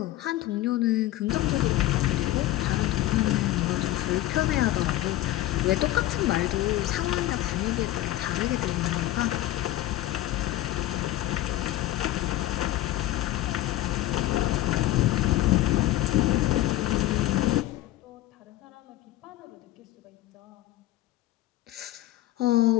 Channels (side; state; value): right; quieter; 15.0 dB